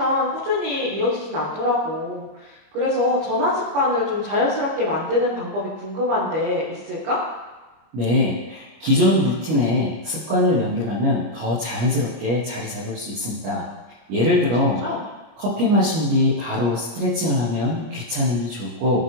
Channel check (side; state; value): left; late; 25 ms